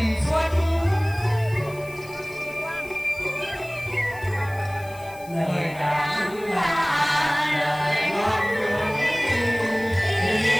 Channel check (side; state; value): left; noise; hiss, 21 dB below the sound